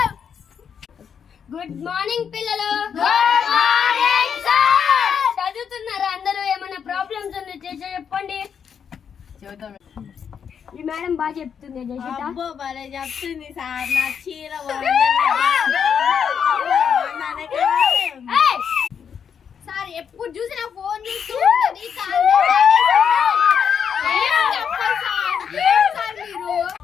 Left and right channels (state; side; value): quieter; right; 7.4 dB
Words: గుడ్ మార్నింగ్ పిల్లలు. Good morning sir. చదువుతున్నారా అందరూ? ఏమైనా ప్రాబ్లమ్స్ ఉంటే చెప్పండి. ఈ మేడం బాగా చెప్తుంది. అబ్బో భలే చెప్తుంది సార్. నా చీర సార్ ఎప్పుడు చూసినా ఫోన్ చూస్తూ